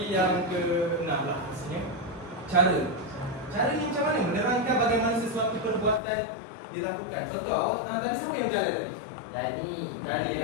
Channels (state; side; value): drops out; right; at 6.0 s